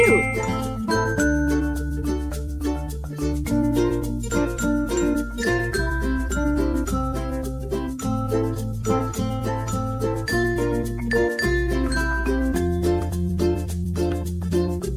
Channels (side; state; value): both; identical; correlation 1.00